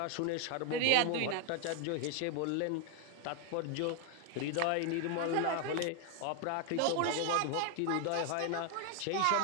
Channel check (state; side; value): different; both; correlation 0.01